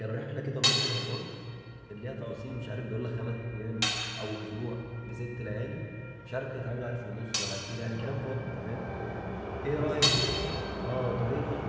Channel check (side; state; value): both; identical; correlation 1.00